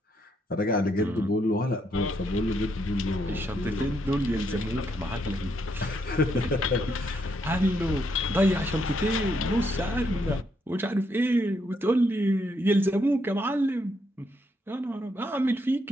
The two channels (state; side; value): normal; both; correlation 0.76